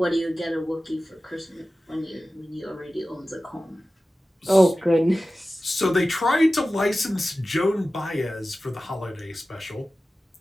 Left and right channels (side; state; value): both; normal; correlation 0.95